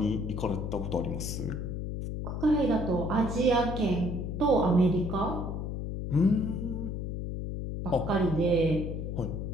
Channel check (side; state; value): left; noise; hum, 4 dB below the sound